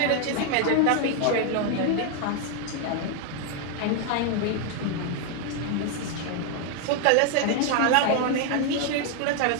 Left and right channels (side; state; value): both; different; correlation 0.00